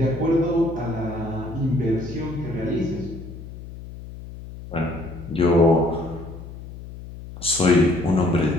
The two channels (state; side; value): noise; left; hum, 13 dB below the sound